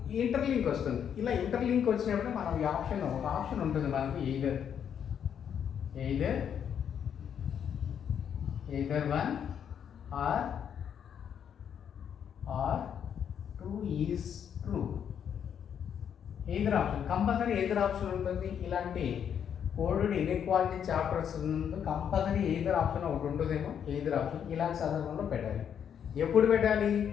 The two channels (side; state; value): right; quieter; 8.4 dB